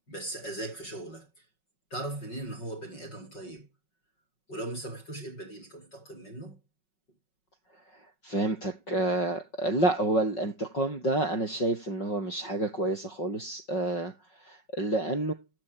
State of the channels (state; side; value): late; right; 5.4 ms